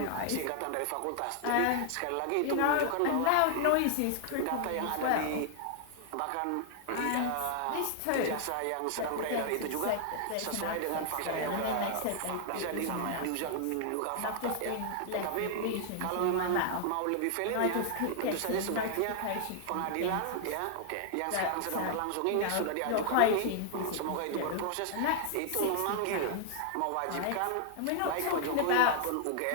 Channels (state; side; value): different; both; correlation 0.00